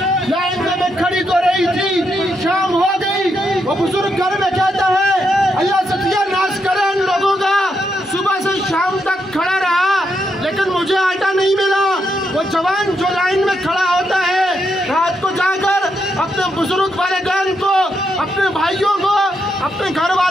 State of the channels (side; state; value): both; normal; correlation 0.81